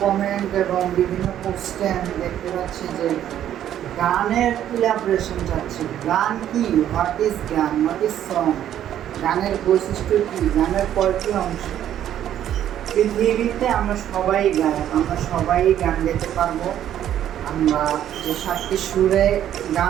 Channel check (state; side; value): quieter; left; 11.0 dB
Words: কমেন্ট এবং বিভিন্ন পোস্টে আমি দেখতে পাচ্ছি যে গানের ইলাবরেশন চাচ্ছে। গান কি? হোয়াট ইজ গান? What is song? গানের বৈশিষ্ট্য কী? গানের কয়টি অংশ? পৃথিবীতে আমরা সবাই গাই, আমরা সবাই গান গাইতে পারবো। আমরা যে 7টি সুরে